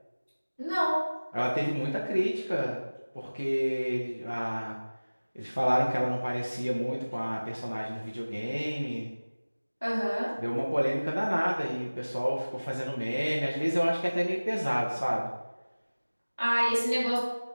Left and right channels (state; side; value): inverted; both; correlation -1.00